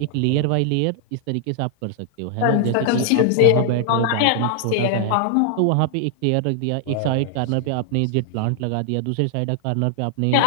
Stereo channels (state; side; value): different; both; correlation 0.00